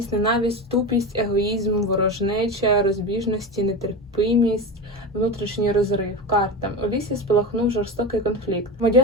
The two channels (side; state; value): both; normal; correlation 0.23